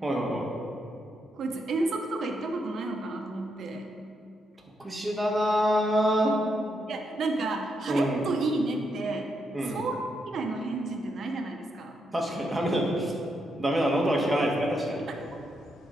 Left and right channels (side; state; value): both; normal; correlation 0.80